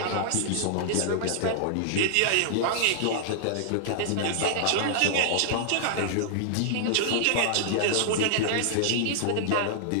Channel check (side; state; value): both; different; correlation -0.01